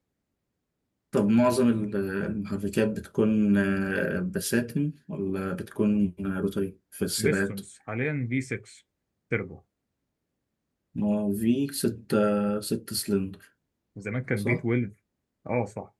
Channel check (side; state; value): both; identical; correlation 1.00